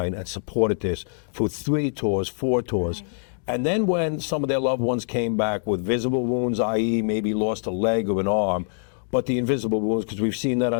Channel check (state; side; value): silent; right; digital silence